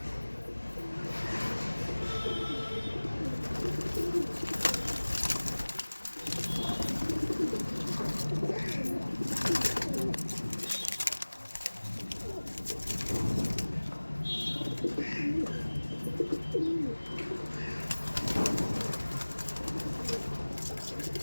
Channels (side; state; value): both; inverted; correlation -1.00